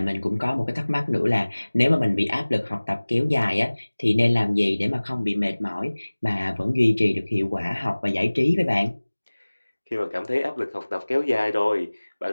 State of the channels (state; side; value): inverted; both; correlation -1.00